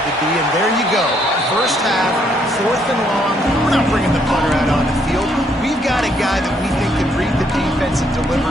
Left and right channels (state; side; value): normal; both; correlation 0.70